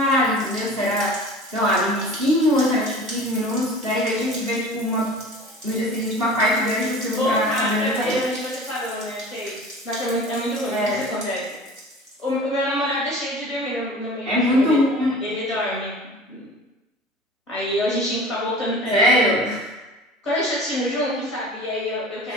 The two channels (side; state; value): both; normal; correlation 0.40